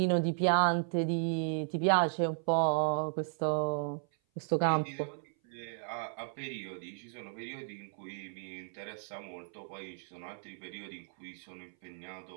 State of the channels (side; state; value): left; silent; 55 dB below the other